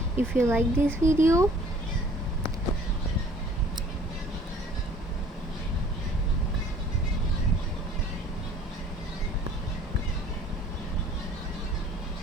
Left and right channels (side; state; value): both; normal; correlation 0.54